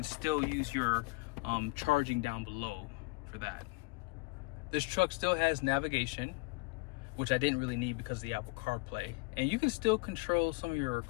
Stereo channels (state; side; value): quieter; right; 27.6 dB